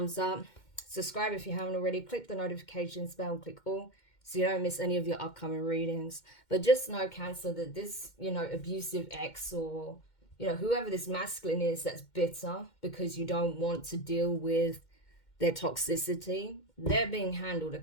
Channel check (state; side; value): late; right; 2.1 ms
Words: up. Subscribe if you haven't already. Click the notification bell, click all, so you don't miss any of your upcoming readings. But just know, Cancer, that this, abusive ex or, whoever this masculine is that's bitter because you don't want to deal with their toxicity, they're being handled,